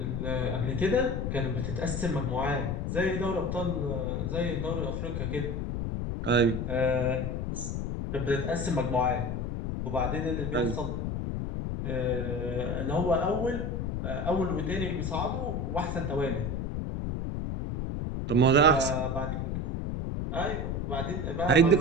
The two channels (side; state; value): left; noise; rumble, 2 dB below the sound